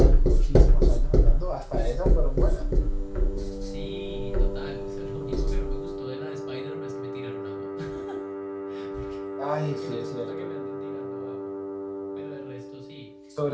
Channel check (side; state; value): both; identical; correlation 1.00